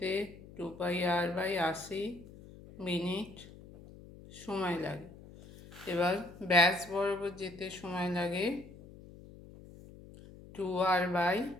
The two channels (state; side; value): noise; left; hum, 18 dB below the sound